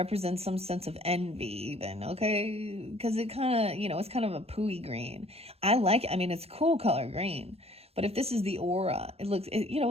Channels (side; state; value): left; late; 0.29 ms